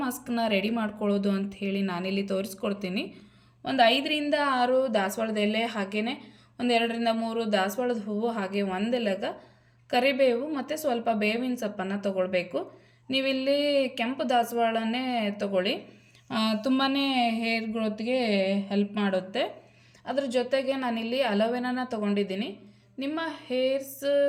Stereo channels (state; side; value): identical; both; correlation 1.00